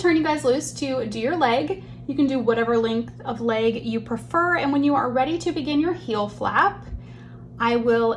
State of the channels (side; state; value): both; identical; correlation 1.00